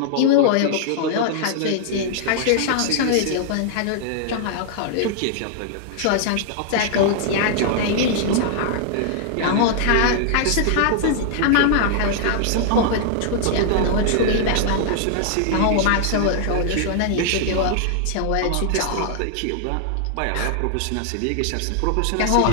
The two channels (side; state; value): both; different; correlation -0.01